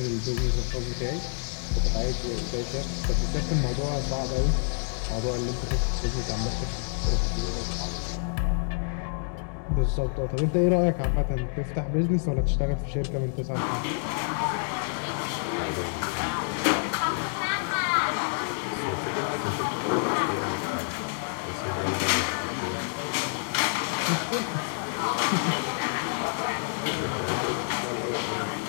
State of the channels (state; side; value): silent; right; 59 dB below the other